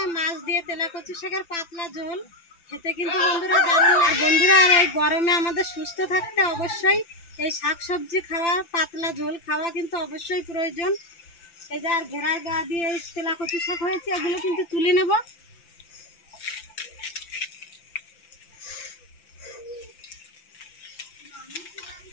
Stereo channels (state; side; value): late; right; 5.9 ms